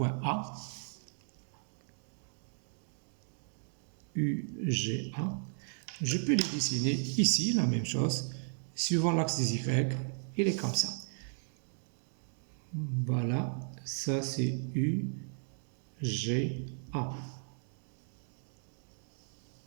A. UGA. Je peux les dessiner ici, la même chose, suivant l'axe des Y, il est comme ça. Voilà, ça c'est UGA.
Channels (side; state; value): left; silent; 54 dB below the other